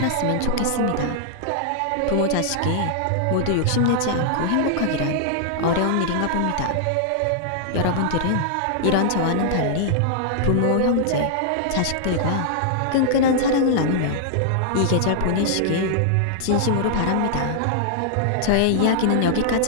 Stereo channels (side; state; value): both; different; correlation -0.01